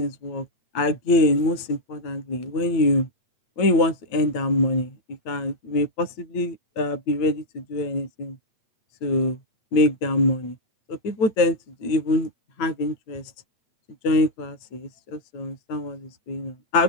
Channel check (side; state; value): right; late; 9.1 ms